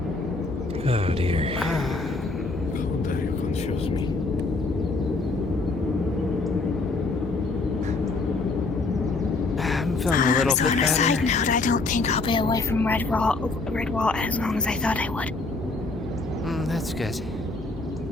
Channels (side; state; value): right; quieter; 3.5 dB